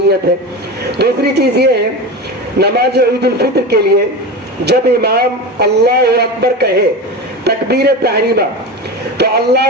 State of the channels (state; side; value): normal; both; correlation 0.25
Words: ہے۔ دوسری چیز یہ ہے، نماز عید الفطر کے لیے جب امام اللہ اکبر کہے تکبیر تحریمہ، تو اللہ